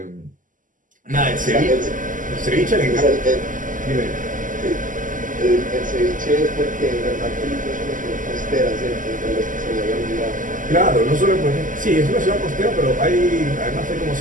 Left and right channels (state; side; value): late; left; 0.38 ms